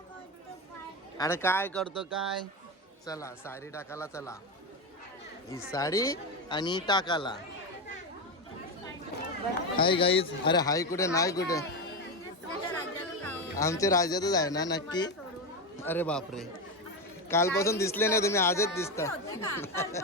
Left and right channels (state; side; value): normal; both; correlation 0.14